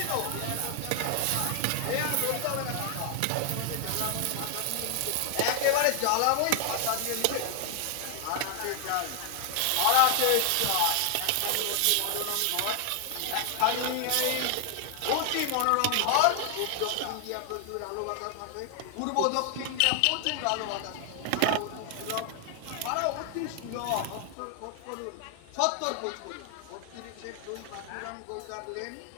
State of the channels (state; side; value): different; both; correlation 0.00